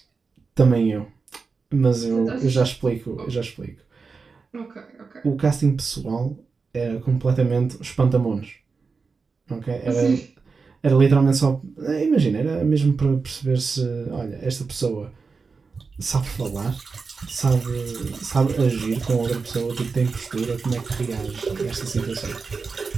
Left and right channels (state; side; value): quieter; left; 4.7 dB